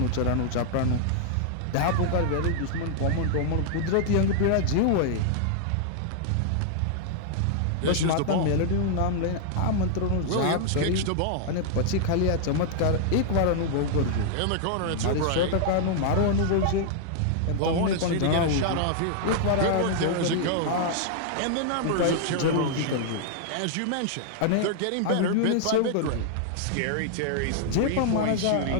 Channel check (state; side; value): different; both; correlation -0.01